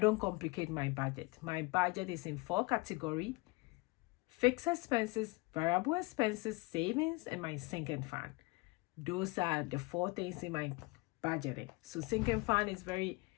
complicate my budget. My budget is in 4 categories: fixed expenses, variable expenses, savings, and my sinking fund. Those are the 4 things in my budgeting. So sinking fund is very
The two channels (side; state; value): right; quieter; 25.7 dB